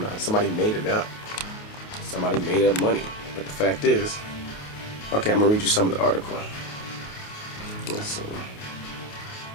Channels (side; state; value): right; late; 28 ms